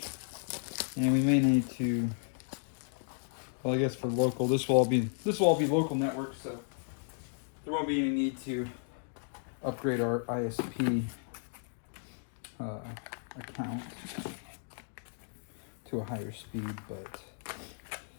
And we may need to, well, I guess for local, this will all be local network, so there won't be any need to upgrade our ISP account to a higher speed, but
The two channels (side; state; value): right; silent; digital silence